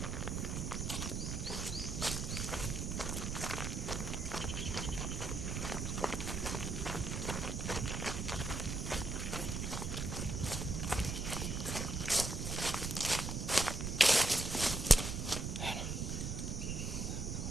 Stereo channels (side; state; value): right; noise; rumble, 2 dB below the sound